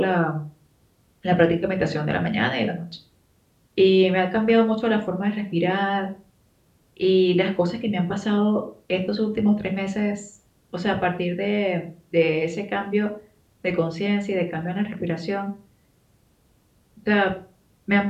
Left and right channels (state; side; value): identical; both; correlation 1.00